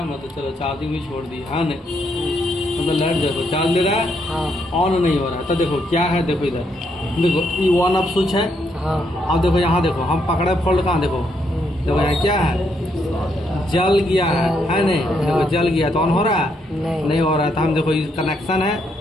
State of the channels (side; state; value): both; normal; correlation 0.76